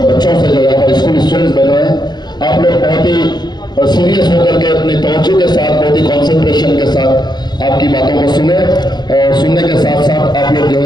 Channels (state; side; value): late; right; 0.21 ms